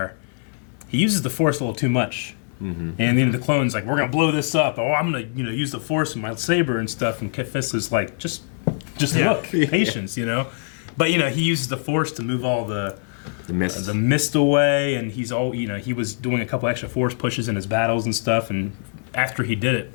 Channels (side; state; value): right; silent; 64 dB below the other